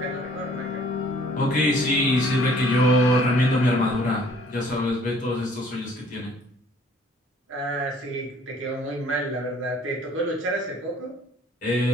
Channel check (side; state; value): both; normal; correlation 0.57